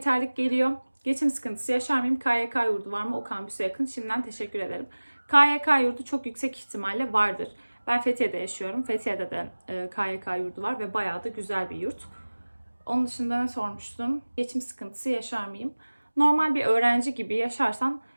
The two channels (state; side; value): inverted; both; correlation -1.00